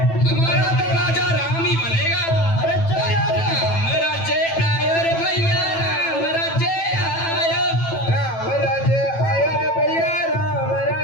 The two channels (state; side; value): late; right; 9.0 ms